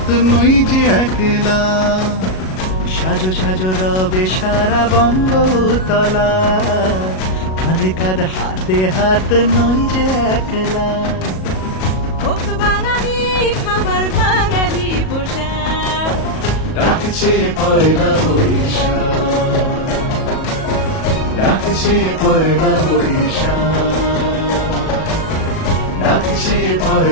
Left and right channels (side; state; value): right; late; 37 ms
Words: নই যে একলা। সাজো সাজো রবে সারা বঙ্গতলা, কাঁধে কাঁধ হাতে হাত নই যে একলা। হোক বাঙালি খাবার বাঙালি পোশাক, ডাকছে পয়লা বৈশাখ, ডাকছে পয়লা বৈশাখ, ডাকছে